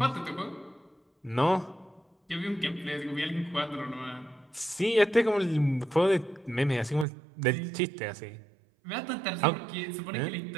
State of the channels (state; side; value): drops out; left; at 7.1 s